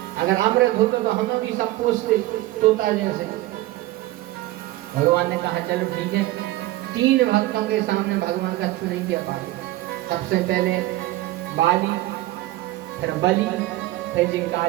अगर अमृत होते तो हमें भी सब पूछते तोता जैसे। भगवान ने कहा चलो ठीक है। 3 भक्तों के सामने भगवान का छू नहीं किया पाए। सबसे पहले बाली, फिर बलि, फिर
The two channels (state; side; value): quieter; left; 17.3 dB